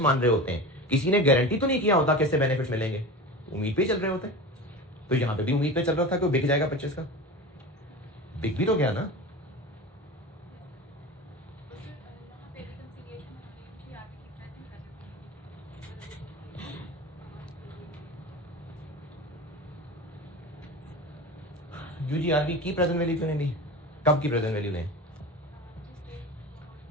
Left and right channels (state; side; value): normal; both; correlation 0.30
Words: मान रहे होते हैं, किसी ने गारंटी तो नहीं किया होता कि इससे बेनिफिट मिलेंगे, उम्मीद पे चल रहे होते हैं। तो यहां पे भी उम्मीद पे चल रहा था कि वो बिक जाएगा 25 का, बिक भी तो गया ना। यूजीआरबी की प्रेजेंट वैल्यू क्यों नहीं ली? कब की प्रेजेंट वैल्यू लें?